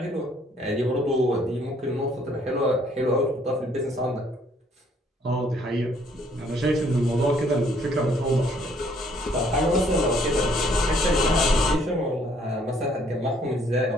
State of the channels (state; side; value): normal; both; correlation 0.64